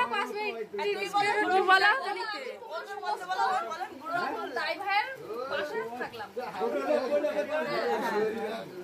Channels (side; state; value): both; identical; correlation 1.00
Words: 5 মিনিট তুমি বলো।